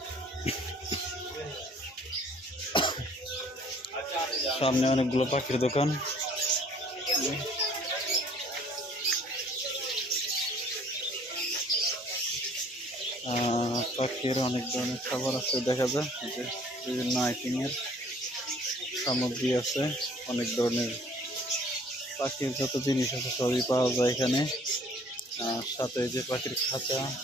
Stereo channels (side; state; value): both; normal; correlation 0.56